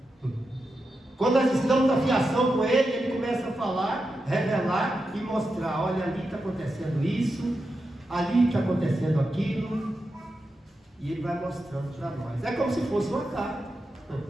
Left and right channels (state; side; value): normal; both; correlation 0.88